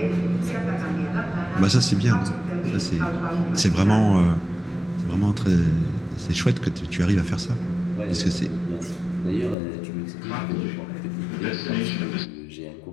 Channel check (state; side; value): drops out; right; at 9.6 s